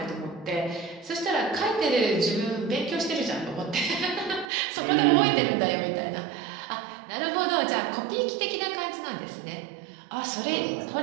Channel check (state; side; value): drops out; left; at 4.5 s